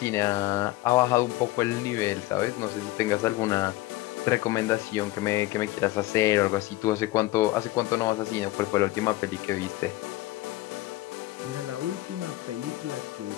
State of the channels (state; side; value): quieter; right; 17.6 dB